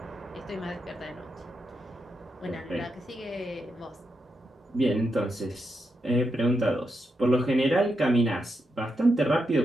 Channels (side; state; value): both; normal; correlation 0.84